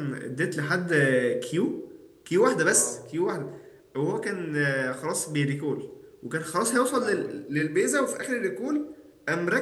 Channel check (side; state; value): both; identical; correlation 1.00